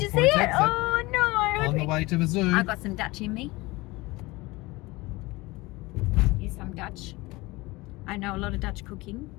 you see Mill it? Point exit. Oh no! On the way to the zoo. I got some Dutch in me. Here's some Dutch. I know a lot of Dutch cooking.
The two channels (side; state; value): right; quieter; 21.9 dB